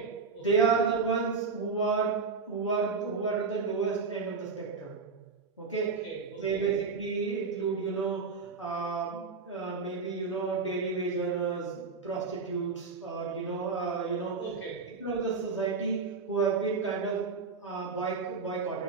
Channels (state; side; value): quieter; left; 4.8 dB